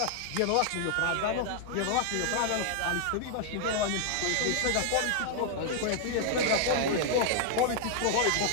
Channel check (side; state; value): both; different; correlation 0.00